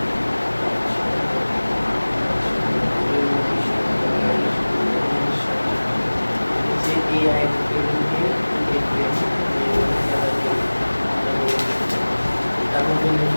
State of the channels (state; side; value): inverted; both; correlation -1.00